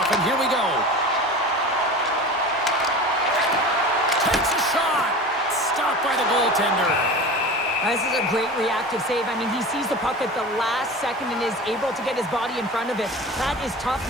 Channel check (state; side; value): normal; both; correlation 0.34